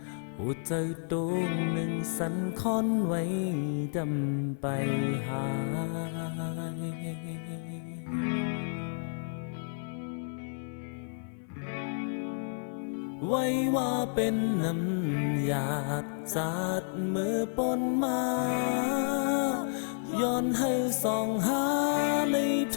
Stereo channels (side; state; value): right; silent; 57 dB below the other